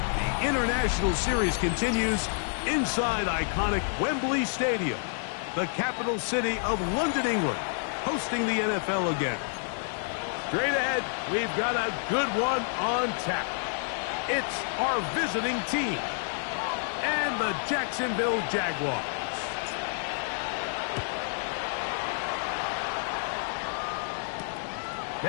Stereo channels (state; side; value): silent; right; digital silence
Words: International Series continues inside iconic Wembley Stadium, the capital city of London, England, hosting the NFL again. Straight ahead, we've got a good one on tap. It's our visiting team and the Jacksonville Jaguars.